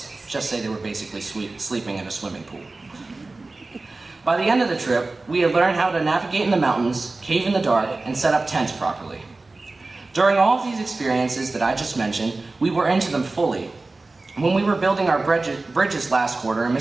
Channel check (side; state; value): left; quieter; 3.4 dB